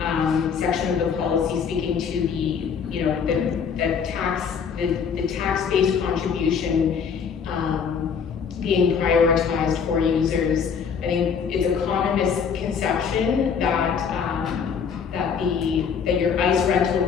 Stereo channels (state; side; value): quieter; right; 6.6 dB